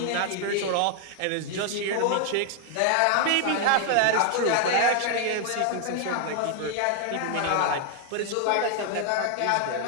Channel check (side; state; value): both; different; correlation 0.00